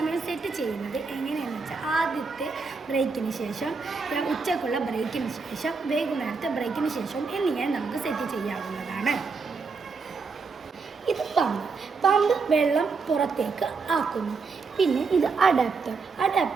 സെറ്റ് ചെയ്യുന്നത് എങ്ങനെയാണെന്ന് വെച്ചാൽ ആദ്യത്തെ ബ്രേക്കിന് ശേഷം, ഉച്ചക്കുള്ള ബ്രേക്കിന് ശേഷം, വൈകുന്നേരത്തെ ബ്രേക്കിന് ശേഷം എന്നിങ്ങനെ നമുക്ക് സെറ്റ് ചെയ്യാവുന്നതാണ്. ഇത് പമ്പ് വെള്ളം പുറത്തേക്ക് ആക്കുന്നു. പിന്നെ ഇത്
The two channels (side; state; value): left; quieter; 4.7 dB